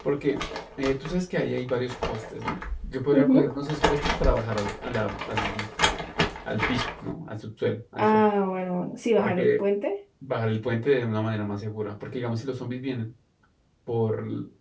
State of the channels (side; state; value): both; identical; correlation 1.00